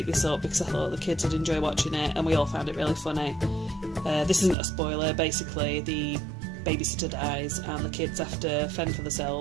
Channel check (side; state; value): left; drops out; at 4.5 s